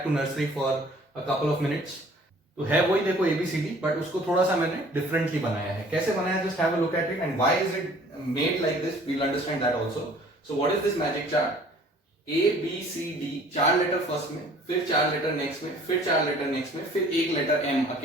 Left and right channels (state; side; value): normal; both; correlation 0.53